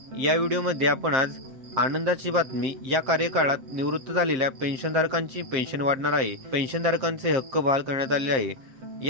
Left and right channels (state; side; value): late; left; 7.7 ms